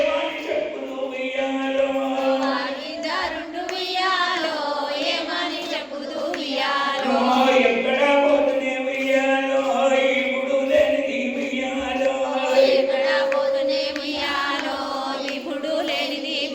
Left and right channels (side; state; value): both; identical; correlation 1.00